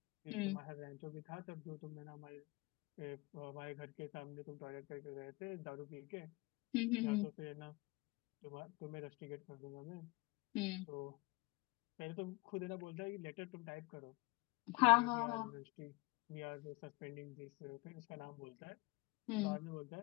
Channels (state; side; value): quieter; right; 24.1 dB